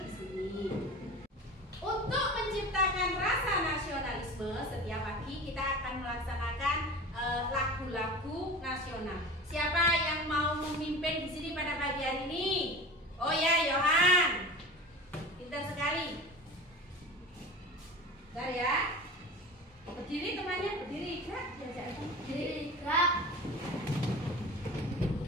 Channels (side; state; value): both; normal; correlation 0.35